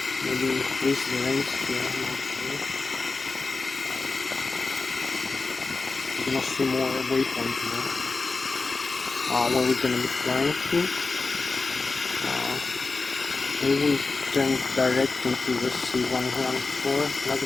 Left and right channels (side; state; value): right; quieter; 3.9 dB